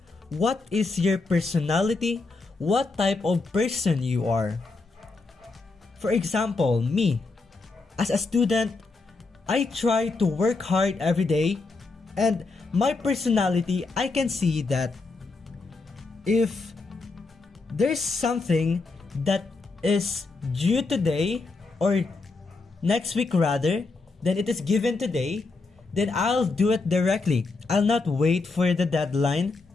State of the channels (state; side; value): quieter; right; 3.8 dB